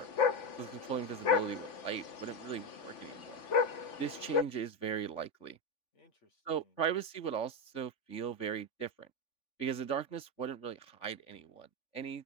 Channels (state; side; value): late; right; 3.5 ms